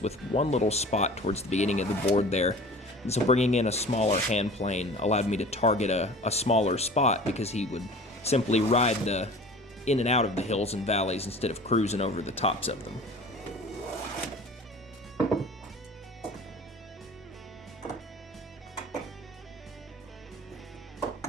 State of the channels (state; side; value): normal; both; correlation 0.42